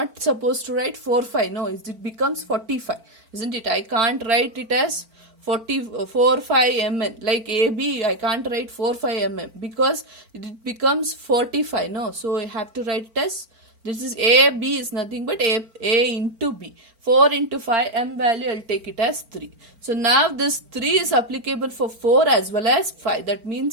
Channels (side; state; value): left; late; 4.4 ms